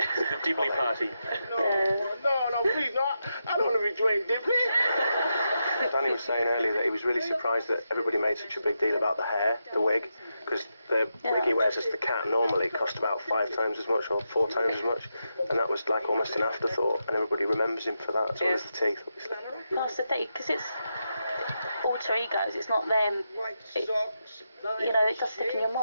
The Dibley Party. No, please, no. I don't want to be Dwayne Dibley. Danny was saying earlier that he was really surprised that everybody made such a big deal about the hair, the wig, because the wig he wears as the cat normally cost about 5 times as much or 4 times as much, and that was like almost an afterthought, and everybody remembers him for that, as well as the teeth, obviously. Well, that's the thing, because it's alter egos. It's not them. It, it does stick in your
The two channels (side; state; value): both; inverted; correlation -0.86